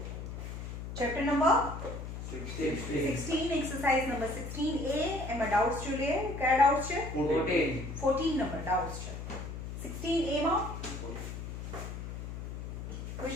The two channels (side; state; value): left; noise; hum, 7 dB below the sound